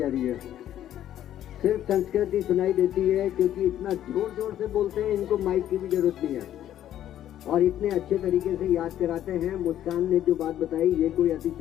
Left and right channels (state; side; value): quieter; right; 11.6 dB